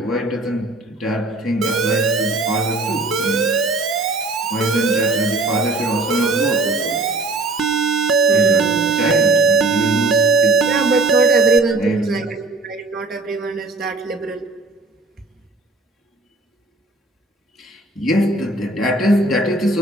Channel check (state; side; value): quieter; left; 3.1 dB